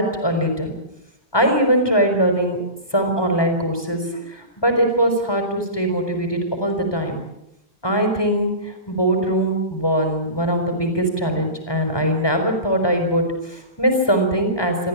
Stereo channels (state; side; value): late; right; 1.2 ms